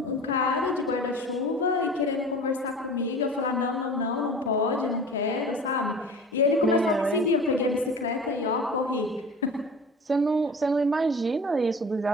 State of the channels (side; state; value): both; normal; correlation 0.39